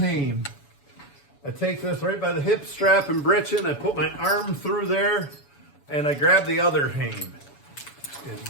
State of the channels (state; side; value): late; right; 7.1 ms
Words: I take this right by the hip strap and britchin. I put my arm through there, and I grab the other hame. And